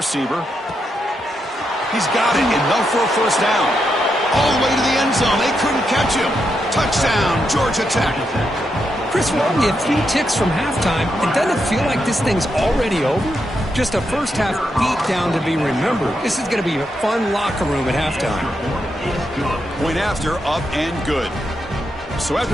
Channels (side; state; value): both; normal; correlation 0.83